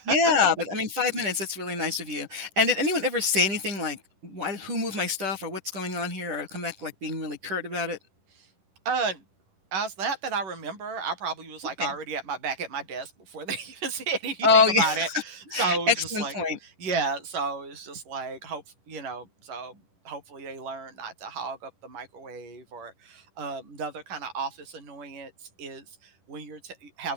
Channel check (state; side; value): late; left; 10 ms